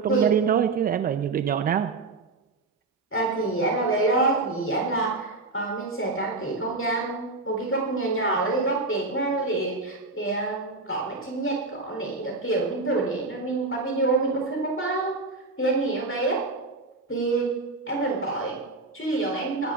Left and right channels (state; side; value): quieter; left; 3.5 dB